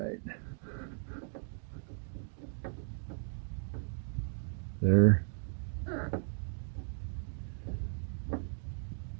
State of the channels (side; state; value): left; silent; digital silence